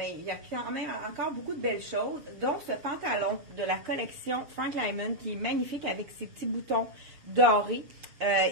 il y a quand même encore beaucoup de belles choses, dont ce pantalon de la collection Frank Lyman qui est magnifique avec ses petits boutons dorés.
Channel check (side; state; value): left; late; 7.0 ms